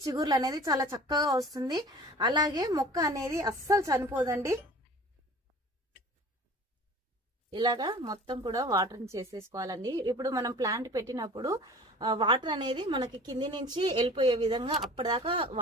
చిగుర్లు అనేది చాలా చక్కగా వస్తుంది. అలాగే మొక్క అనేది అస్సలు చనిపోదండి. ఇలాగా మొత్తం కూడా వాటరింగ్ చేసేసుకోవాలండి. ఇప్పుడు మనం ప్లాంట్ పెట్టినప్పుడు వాటర్ అనేది మనకి కింది నుంచి వెళ్ళిపోయే విధంగా అప్పటిదాకా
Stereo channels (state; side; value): normal; both; correlation 0.43